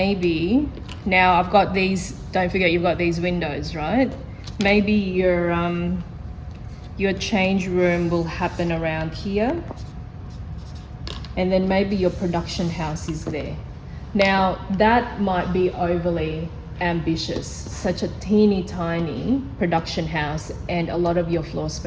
now I've got these, don't forget you've got these windows, right? Maybe your change room will happen around here. And then maybe your production house is there. Now, that might be overly ambitious, such a teeny tiny production house and a lot of your floor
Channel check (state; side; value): identical; both; correlation 1.00